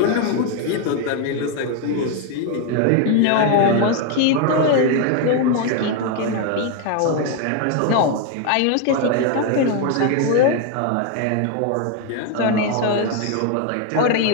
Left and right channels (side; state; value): both; different; correlation 0.01